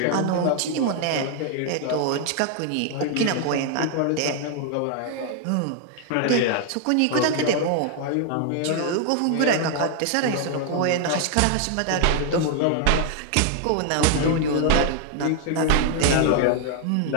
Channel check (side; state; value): both; different; correlation 0.00